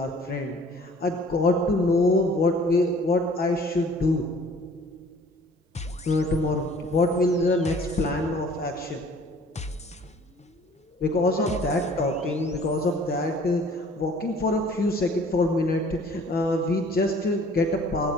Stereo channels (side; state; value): both; normal; correlation 0.53